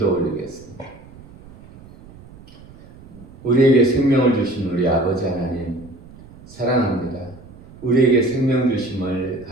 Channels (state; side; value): noise; right; rumble, 21 dB below the sound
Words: 올리겠습니다. 우리에게 생명을 주신 우리 아버지 하나님 사랑합니다. 우리에게 생명 주심을